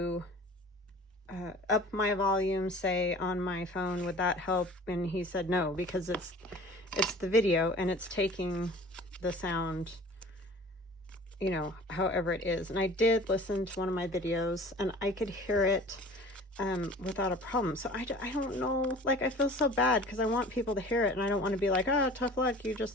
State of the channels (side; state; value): both; normal; correlation 0.44